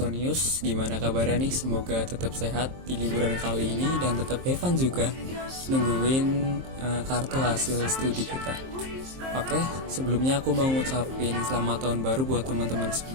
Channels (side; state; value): left; late; 23 ms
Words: gimana kabarnya nih? Semoga tetap sehat di liburan kali ini dan tetap have fun juga nungguin kartu hasil studi kita. Oke, sebelumnya aku mau ngucapin selamat tahun baru buat teman-teman